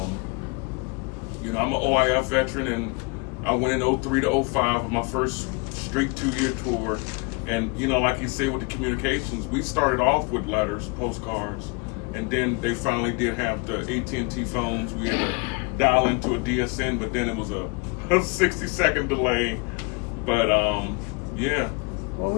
you know, I'm an OIF veteran, and I went in 03 to 05 with my first straight 2-year tour. And, you know, like you said with the communications, we started off with letters, postcards, and then they finally did have the AT&T phones. We had to dial into a DSN, but then it was a 60-second delay. But, yeah. Well,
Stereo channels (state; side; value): quieter; right; 30.4 dB